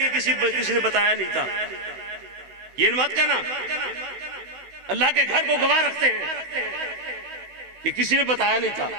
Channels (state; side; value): late; left; 16 ms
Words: کسی نے بتایا نہیں تھا، یہ مت کہنا۔ اللہ کے گھر کو گواہ رکھتے ہیں کہ کسی نے بتایا نہیں تھا۔